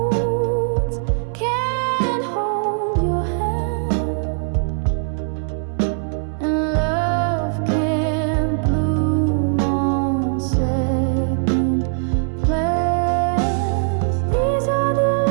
can't hold your hand, and love can't bloom on second plans. These are the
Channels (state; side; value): silent; left; 61 dB below the other